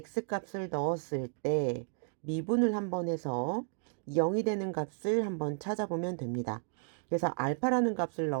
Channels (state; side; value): silent; left; 56 dB below the other